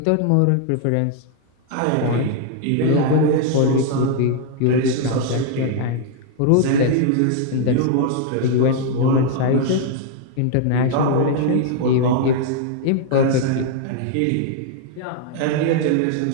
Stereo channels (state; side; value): different; both; correlation 0.00